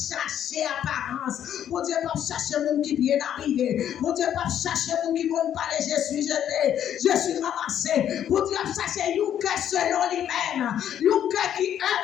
apparence. Mon Dieu pas chercher mon qui bien arrivé. Mon Dieu pas chercher mon qui ne parler, je suis jeté, je suis ramassé. Mon Dieu pas chercher un cœur selon lui-même. Un cœur qui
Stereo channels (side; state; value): right; quieter; 10.1 dB